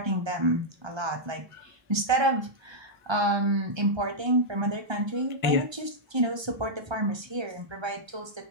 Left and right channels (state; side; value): late; left; 1.3 ms